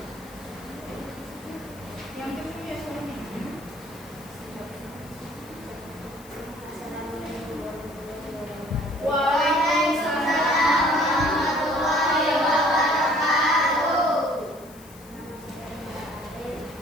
Yang kecil ya soalnya. Waalaikumsalam warahmatullahi wabarakatuh.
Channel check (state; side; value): noise; left; hiss, 22 dB below the sound